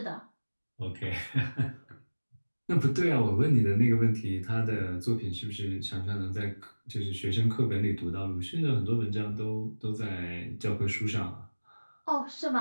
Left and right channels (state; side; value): inverted; both; correlation -1.00